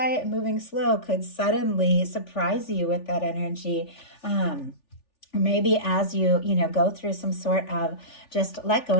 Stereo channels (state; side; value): late; right; 3.4 ms